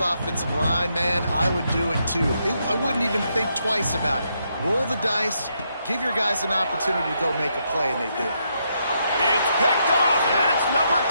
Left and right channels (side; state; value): both; inverted; correlation -0.78